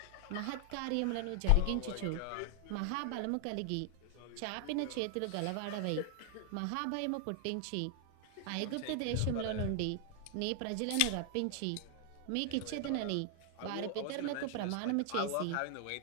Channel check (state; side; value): different; both; correlation 0.00